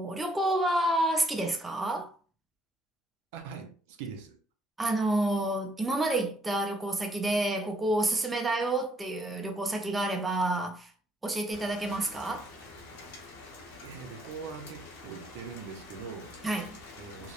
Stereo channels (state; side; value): normal; both; correlation 0.70